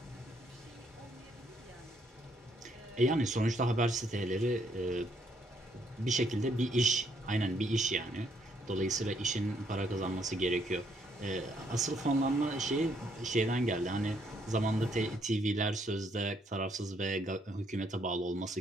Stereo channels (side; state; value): both; normal; correlation 0.70